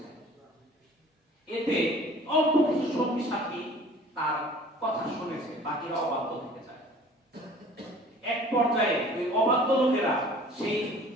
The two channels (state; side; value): normal; both; correlation 0.49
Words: এতে অল্প কিছু সঙ্গী সাথী তার কথা শুনেছে, বাকিরা অবাধ্য থেকে যায়। এক পর্যায়ে ওই অবাধ্য লোকেরা সেই